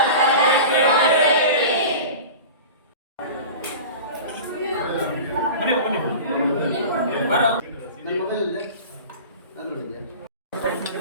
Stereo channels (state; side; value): inverted; both; correlation -0.34